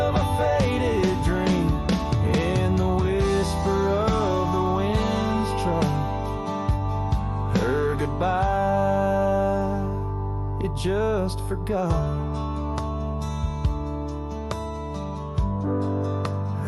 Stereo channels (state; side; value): identical; both; correlation 1.00